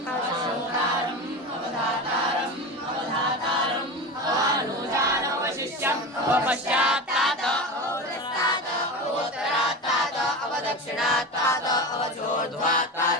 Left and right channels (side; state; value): both; normal; correlation 0.26